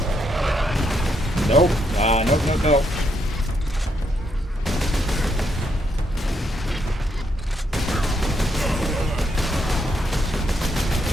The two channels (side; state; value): both; normal; correlation 0.77